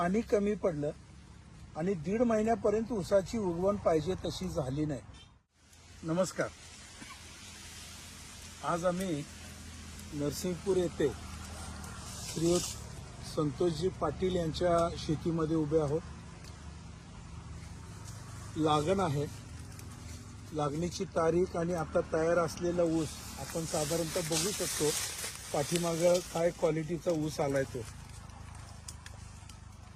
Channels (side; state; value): both; identical; correlation 1.00